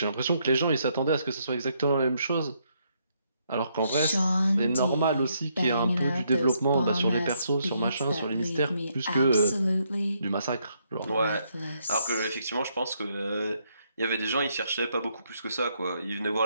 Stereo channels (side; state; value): both; inverted; correlation -0.74